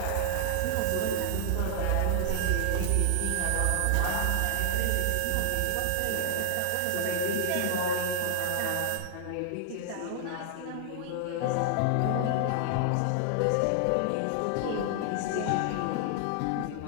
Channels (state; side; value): different; both; correlation 0.00